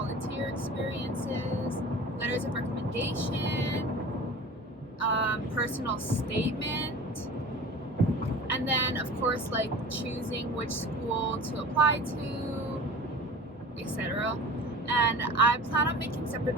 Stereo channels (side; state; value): both; normal; correlation 0.39